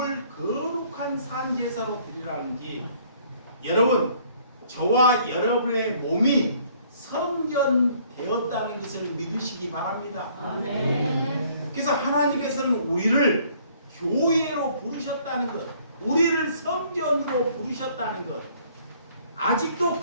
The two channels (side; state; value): both; inverted; correlation -0.60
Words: 거룩한 산 제사로 드리라는지 여러분, 저와 여러분의 몸이 성전되었다는 것을 믿으시기 바랍니다. 아멘. 그래서 하나님께서는 우리를 교회로 부르셨다는 것, 우리를 성전으로 부르셨다는 것, 아직도